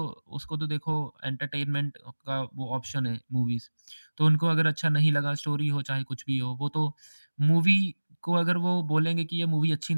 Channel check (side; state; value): both; inverted; correlation -1.00